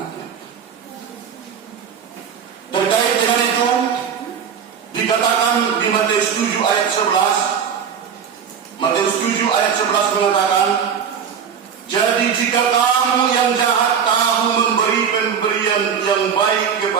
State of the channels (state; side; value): quieter; left; 7.4 dB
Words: Terkait dengan itu, dikatakan di Matius 7 ayat 11, Matius 7 ayat 11 mengatakan, "Jadi jika kamu yang jahat tahu memberi pemberian yang baik